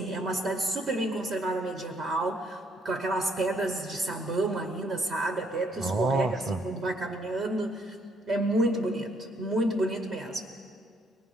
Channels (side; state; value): both; normal; correlation 0.68